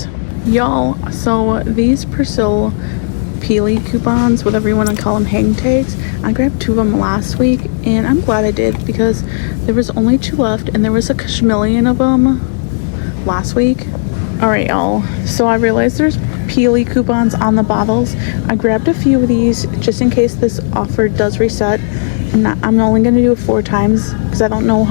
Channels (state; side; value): silent; right; digital silence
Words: Y'all, so these Persil Peely coupons, whatever you want to call them, hang tags, I grabbed 2 of them last week, and I'm glad I did because there was only 2 left, and there was a million of them last week. All right, y'all, so I realized there's Peely coupons on the bottles. I grabbed a few of these just in case this offer does reset. I'm only going to do it 4 times because I don't know